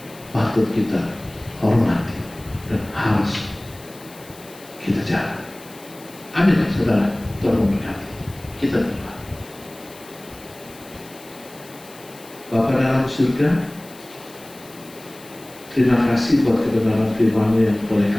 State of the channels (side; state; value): left; noise; hiss, 21 dB below the sound